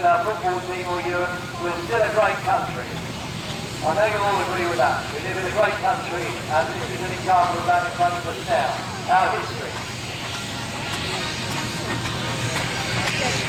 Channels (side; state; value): both; identical; correlation 1.00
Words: our football team or Europe, we're still a great country. I know you'll all agree with that. We live in a great country, and this is an example of that in front of us now. Our history.